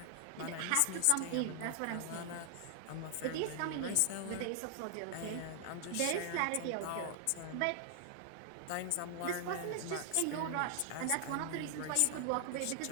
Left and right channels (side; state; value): both; different; correlation 0.00